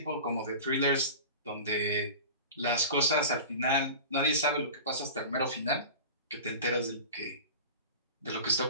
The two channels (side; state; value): both; inverted; correlation -0.34